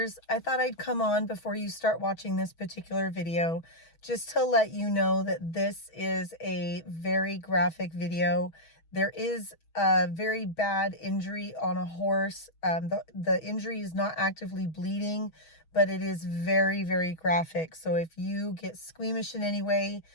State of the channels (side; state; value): right; late; 6.2 ms